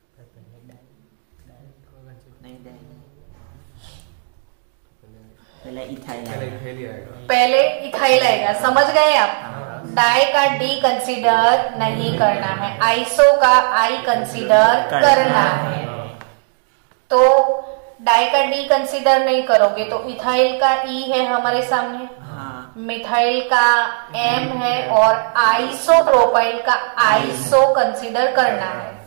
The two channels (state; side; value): silent; left; 68 dB below the other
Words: नहीं, पहले इथाइल आएगा। पहले इथाइल आएगा, समझ गए आप? डाई का डी कंसीडर नहीं करना है, आइसो का आई कंसीडर करना है। तो डाई का डी कंसीडर नहीं करोगे तो इथाइल का ई है हमारे सामने, मिथाइल का एम है और आइसोप्रोपाइल का आइसो कंसीडर करना है।